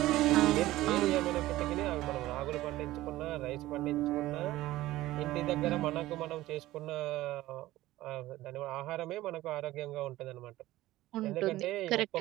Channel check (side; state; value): left; quieter; 16.5 dB